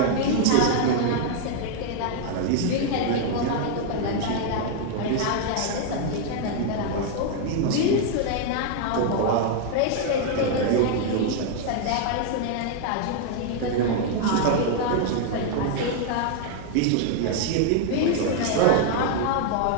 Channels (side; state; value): both; different; correlation 0.00